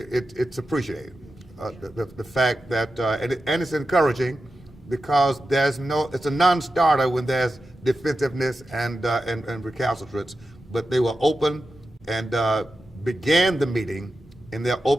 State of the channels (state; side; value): normal; both; correlation 0.91